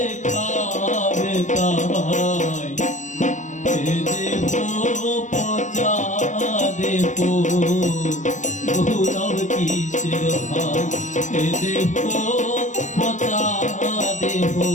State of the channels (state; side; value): late; right; 0.35 ms